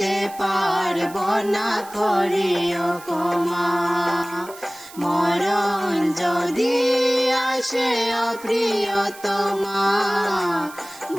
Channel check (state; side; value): noise; right; hiss, 19 dB below the sound